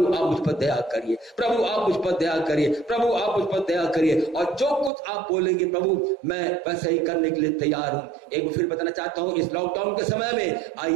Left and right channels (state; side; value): drops out; left; at 4.9 s